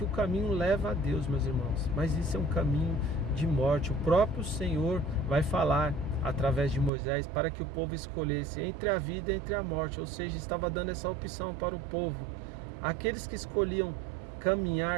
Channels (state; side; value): drops out; left; at 6.9 s